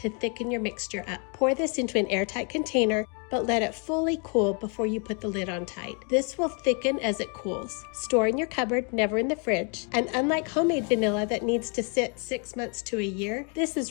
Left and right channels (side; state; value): right; quieter; 37.1 dB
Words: thicken your mixture up. Pour this into an airtight container, but let it fully cool before you put the lid on tight. This will thicken as it cools. Store in your cupboard, never in the fridge. And unlike homemade vanilla that needs to sit 6 months to a year, this